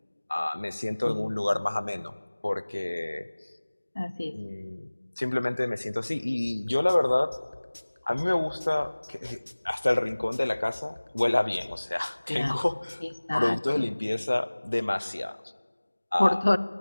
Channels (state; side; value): inverted; both; correlation -1.00